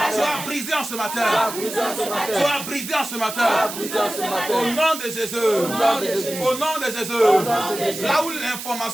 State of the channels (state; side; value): noise; right; hiss, 8 dB below the sound